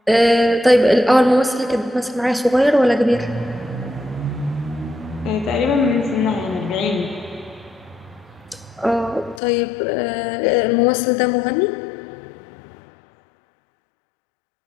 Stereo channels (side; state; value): right; drops out; at 9.4 s